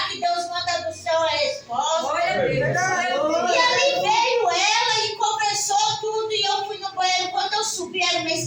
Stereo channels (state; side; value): identical; both; correlation 1.00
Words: que Deus manda do céu a resposta. E ali veio ela e conversou tudo e eu fui no banheiro. Quando eu subi, era uma